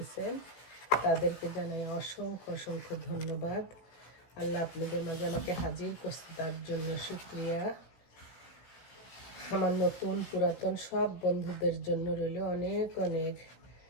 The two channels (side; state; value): right; late; 16 ms